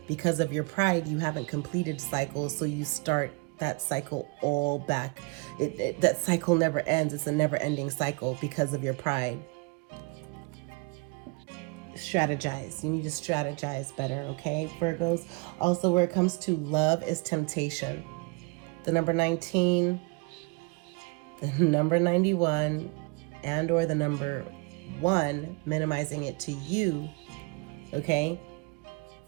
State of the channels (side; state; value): left; quieter; 29.1 dB